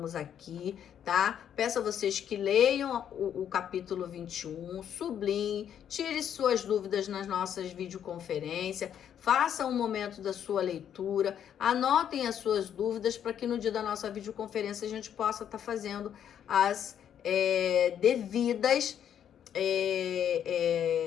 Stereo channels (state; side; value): quieter; right; 9.3 dB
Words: aqui, tá? Peço a vocês que leiam o capítulo 21, sublinhem, tire suas dúvidas nas nossas videoconferências, façam um momento da sua leitura, anotem as suas dúvidas para que no dia da nossa videoconferência a gente possa estar fazendo as devidas